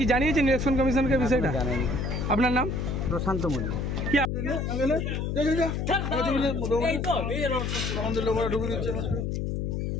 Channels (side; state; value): left; noise; hum, 1 dB below the sound